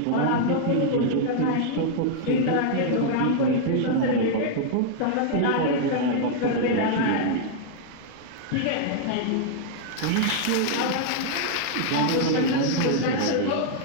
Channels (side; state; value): both; different; correlation -0.01